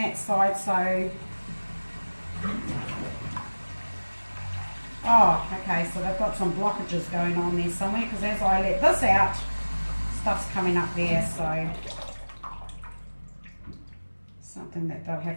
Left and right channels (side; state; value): both; inverted; correlation -1.00